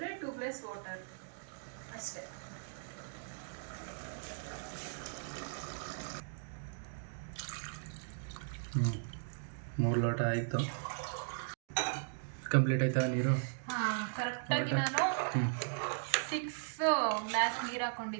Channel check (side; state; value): left; silent; digital silence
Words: 2 ಗ್ಲಾಸ್ ವಾಟರ್ ಅಷ್ಟೇ. ಹ್ಞೂ 3 ಲೋಟ ಆಯಿತು. ಕಂಪ್ಲೀಟ್ ಆಯ್ತಾ ನೀರು? ಹಾಂ, ಕರೆಕ್ಟಾಗಿ ನಾನು 6 ಗ್ಲಾಸ್ ನೀರು